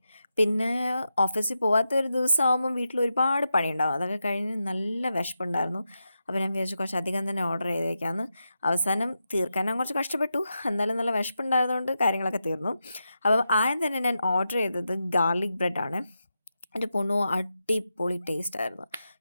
പിന്നെ ഓഫീസിൽ പോകാത്ത ഒരു ദിവസമാകുമ്പം വീട്ടിൽ ഒരുപാട് പണിയുണ്ടാവും. അതൊക്കെ കഴിഞ്ഞ് നല്ല വിശപ്പുണ്ടായിരുന്നു. അപ്പോൾ ഞാൻ വിചാരിച്ചു കുറച്ചധികം തന്നെ ഓർഡർ ചെയ്തേക്കാമെന്ന്. അവസാനം തീർക്കാൻ ഞാൻ കുറച്ച് കഷ്ടപ്പെട്ടു. എന്നാലും നല്ല വിശപ്പുണ്ടായതുകൊണ്ട് കാര്യങ്ങളൊക്കെ തീർന്നു. അപ്പം ആദ്യം തന്നെ ഞാൻ ഓർഡർ ചെയ്തത് ഗാർലിക് ബ്രെഡാണ്. എൻ്റെ പൊന്നോ, അടിപൊളി ടേസ്റ്റായിരുന്നു.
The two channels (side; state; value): both; inverted; correlation -0.88